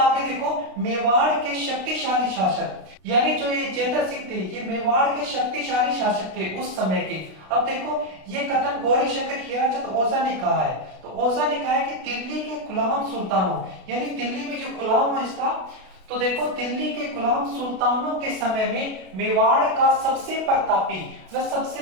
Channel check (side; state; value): left; late; 32 ms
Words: देखो, मेवाड़ के शक्तिशाली शासक, यानी जो ये जैतर सिंह थे, ये मेवाड़ के शक्तिशाली शासक थे उस समय के। अब देखो ये कथन गौरी शंकर हीराचंद ओझा ने कहा है। तो ओझा ने कहा है कि दिल्ली के गुलाम सुल्तानों, यानी दिल्ली में जो गुलाम वंश था, तो देखो दिल्ली के गुलाम सुल्तानों के समय में मेवाड़ का सबसे प्रतापी व सबसे